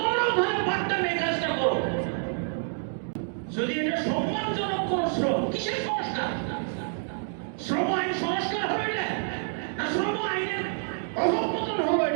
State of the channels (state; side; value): silent; left; digital silence